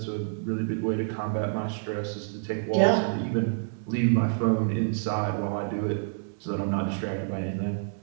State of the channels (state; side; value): silent; left; digital silence